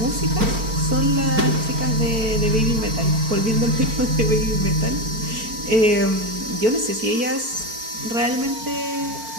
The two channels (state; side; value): late; left; 4.5 ms